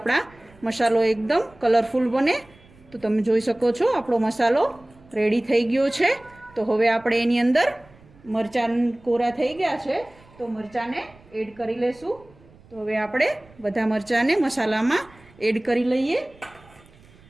મસાલો એકદમ કલરફુલ બને. તો તમે જોઈ શકો છો આપણો મસાલો રેડી થઈ ગયો છે. તો હવે આપણે એની અંદર મરચાં કોરા થઈ ગયા છે તો મરચાંને એડ કરી લેશું. તો હવે આપણે બધા મરચાંને મસાલામાં એડ કરી લઈએ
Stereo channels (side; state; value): right; noise; rumble, 26 dB below the sound